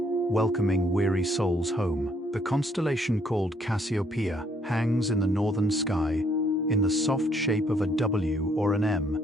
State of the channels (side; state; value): both; normal; correlation 0.68